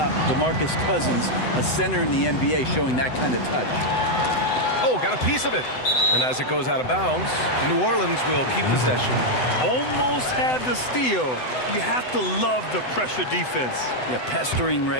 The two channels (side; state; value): right; late; 7.9 ms